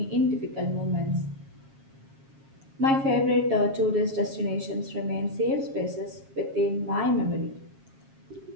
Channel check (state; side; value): late; left; 7.4 ms